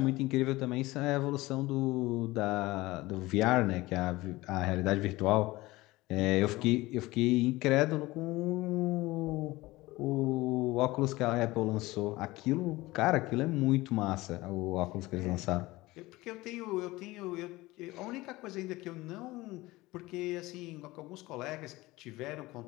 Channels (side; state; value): right; quieter; 19.7 dB